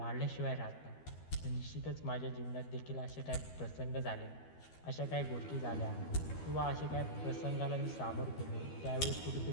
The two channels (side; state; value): right; late; 12 ms